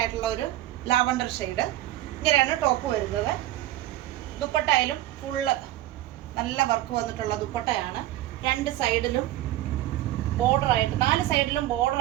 ആയിട്ടുള്ള ഒരു ലാവണ്ടർ ഷെയ്ഡ്. ഇങ്ങനെയാണ് ടോപ്പ് വരുന്നത്. ദുപ്പട്ടയിലും ഫുള്ള് നല്ല വർക്ക് വന്നിട്ടുള്ള ദുപ്പട്ടയാണ്. രണ്ട് സൈഡിലും ബോർഡറായിട്ട് 4 സൈഡിലും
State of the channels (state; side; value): quieter; left; 14.8 dB